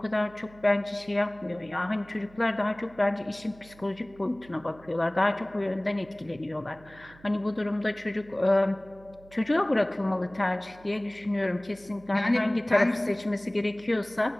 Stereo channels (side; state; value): right; noise; hum, 24 dB below the sound